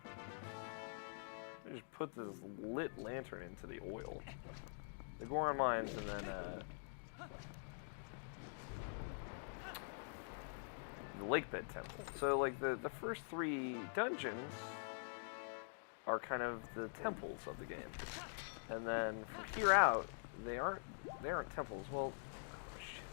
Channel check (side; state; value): right; silent; digital silence